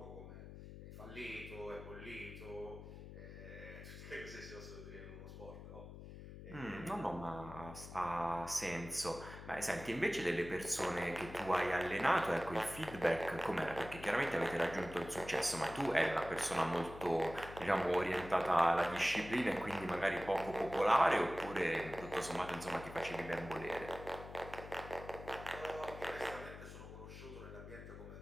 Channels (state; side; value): noise; left; hum, 13 dB below the sound